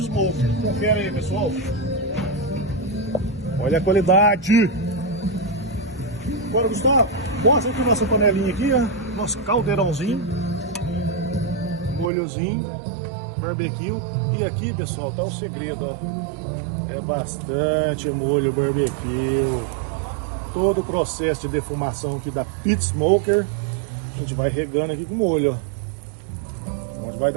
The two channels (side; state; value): left; drops out; at 12.1 s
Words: Smoker. Confere aí, pessoal. Olha a qualidade. Agora, Gustavo, mostra aqui nossa panelinha aqui, ó. Nosso caldeirãozinho, molhozinho, barbecue. E aqui, pessoal, tá o segredo, ó. É bastante molho barbecue. Todo o processo de defumação aqui da Pit Smoker. A gente vai regando aqui com molho, ó. Onde vai